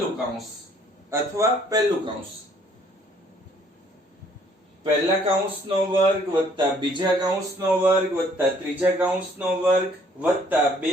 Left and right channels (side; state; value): both; normal; correlation 0.62